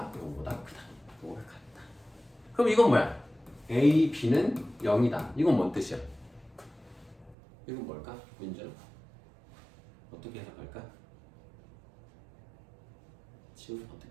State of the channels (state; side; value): drops out; left; at 7.4 s